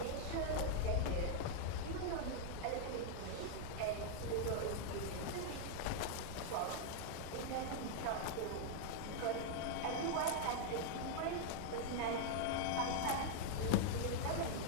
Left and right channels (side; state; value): both; different; correlation -0.01